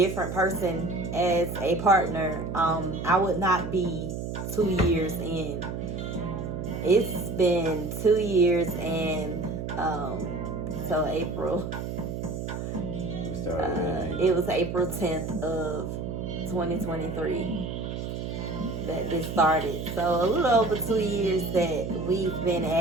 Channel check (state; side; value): noise; right; hum, 5 dB below the sound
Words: person as a partner, I would not be 2 years in. It's been 2 years, and so April. It was April 10th of 2023 that this started. So a little over 2 years that we've been